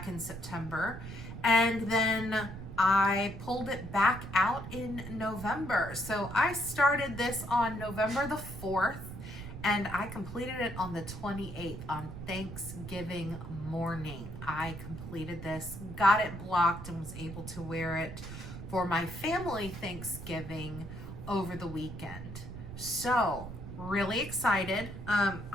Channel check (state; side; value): noise; right; rumble, 10 dB below the sound